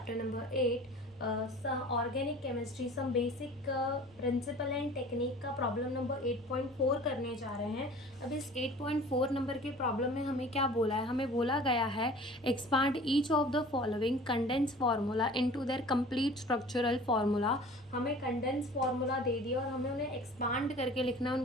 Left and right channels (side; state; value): right; noise; hum, 29 dB below the sound